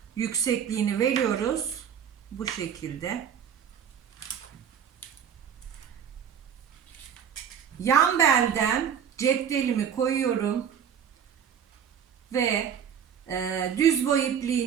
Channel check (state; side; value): quieter; left; 8.2 dB